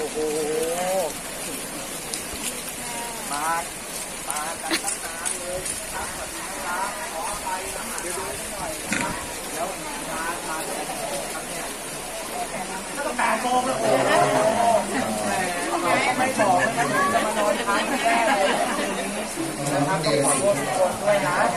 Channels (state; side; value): identical; both; correlation 1.00